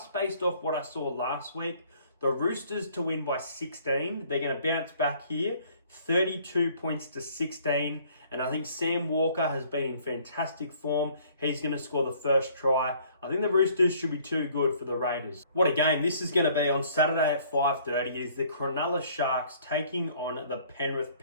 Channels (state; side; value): inverted; both; correlation -0.58